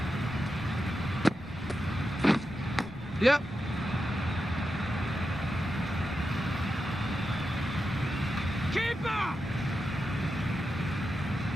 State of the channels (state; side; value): noise; left; rumble, 22 dB below the sound